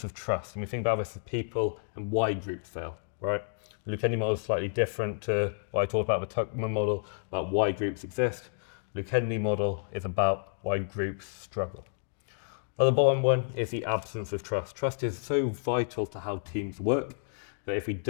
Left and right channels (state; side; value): silent; right; digital silence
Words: of trust. And we think about this as people and why groups fail, right? The Lukenny model is slightly different to what I talked about the Tuckman model, about why groups exist. The Lukenny model is about why groups struggle. Well, the bottom one is the absence of trust. Trust is so vital to how teams work that if we